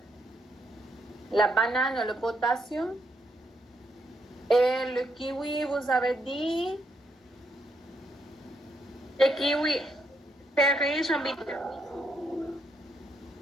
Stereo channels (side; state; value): both; normal; correlation 0.77